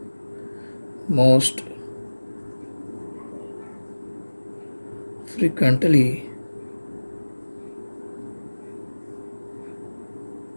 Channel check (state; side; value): inverted; both; correlation -1.00